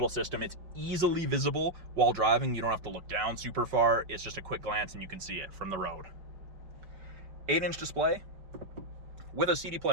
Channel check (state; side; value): late; left; 5.2 ms